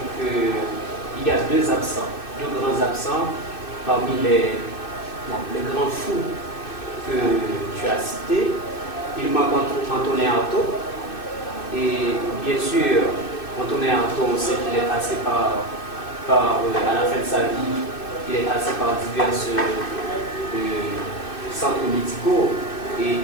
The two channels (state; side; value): late; right; 2.6 ms